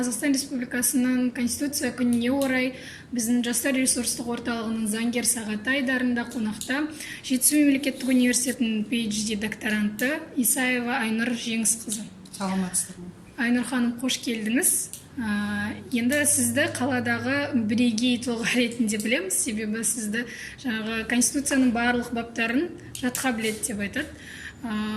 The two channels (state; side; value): identical; both; correlation 1.00